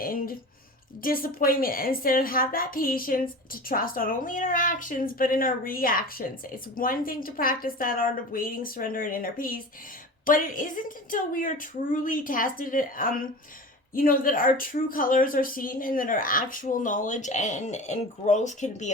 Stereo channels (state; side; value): normal; both; correlation 0.34